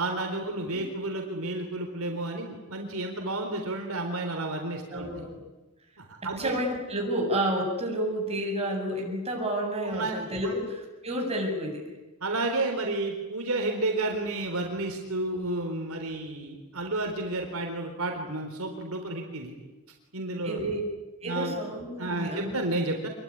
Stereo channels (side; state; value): both; normal; correlation 0.00